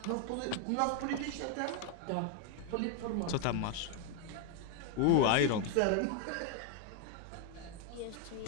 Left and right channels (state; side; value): different; both; correlation 0.01